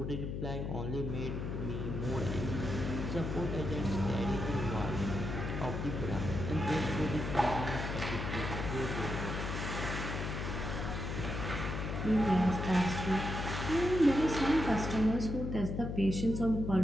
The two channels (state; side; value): noise; left; hum, 4 dB below the sound